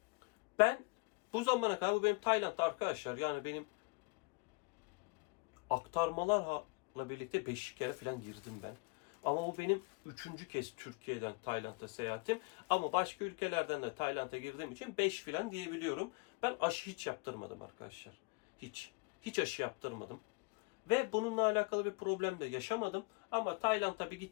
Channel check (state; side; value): quieter; right; 29.0 dB